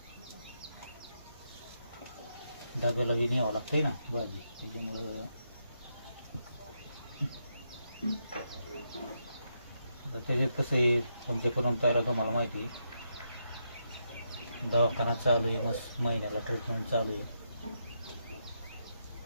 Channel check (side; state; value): both; inverted; correlation -0.82